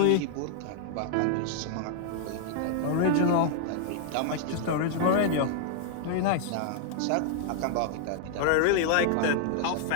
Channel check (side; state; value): both; different; correlation 0.00